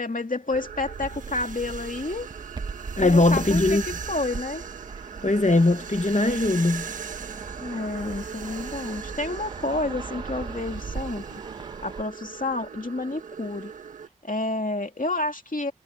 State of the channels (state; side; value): normal; both; correlation 0.59